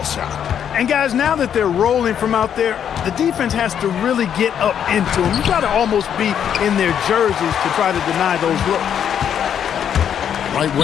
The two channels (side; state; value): right; quieter; 8.8 dB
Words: And guys, now that they're rolling from out there, the defense has to really get up into them. You got to almost be in their jerseys to try to deny those looks. Right